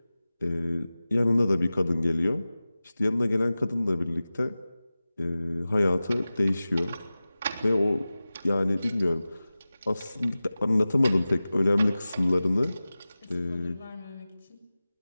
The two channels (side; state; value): both; inverted; correlation -0.96